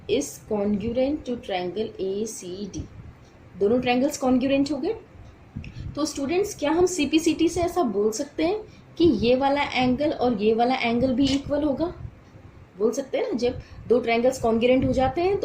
is congruent to triangle ACD. दोनों ट्रायंगल्स कॉन्ग्रुएंट हो गए. तो स्टूडेंट्स, क्या हम CPCT से ऐसा बोल सकते हैं कि ये वाला एंगल और ये वाला एंगल भी इक्वल होगा? बोल सकते हैं ना, जब दो ट्रायंगल्स कॉन्ग्रुएंट हो जाते हैं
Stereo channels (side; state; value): both; identical; correlation 1.00